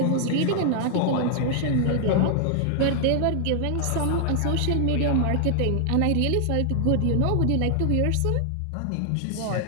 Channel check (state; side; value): different; both; correlation -0.01